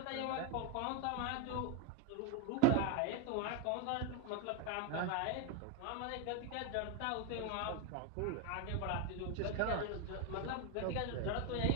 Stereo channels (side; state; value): both; different; correlation 0.02